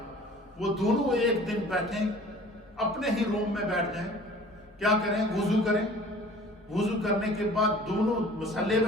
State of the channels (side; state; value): both; normal; correlation 0.47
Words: وہ دونوں ایک دن بیٹھیں، اپنے ہی روم میں بیٹھ جائیں، کیا کریں، وضو کریں، وضو کرنے کے بعد دونوں مصلے